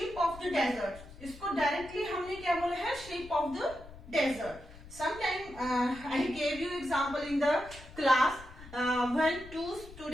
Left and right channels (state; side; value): noise; left; rumble, 17 dB below the sound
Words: of the desert. इसको डायरेक्टली हमने क्या बोला है, shape of the desert. Sometime I gave you example in the class when two